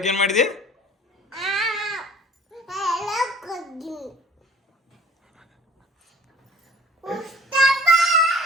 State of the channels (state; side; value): normal; both; correlation 0.51